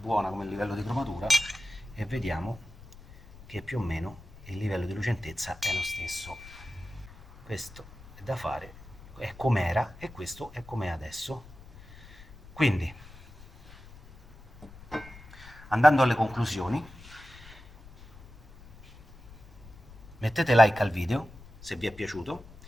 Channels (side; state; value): left; noise; rumble, 20 dB below the sound